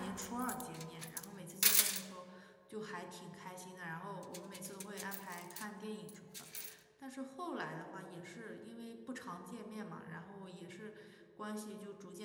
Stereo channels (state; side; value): identical; both; correlation 1.00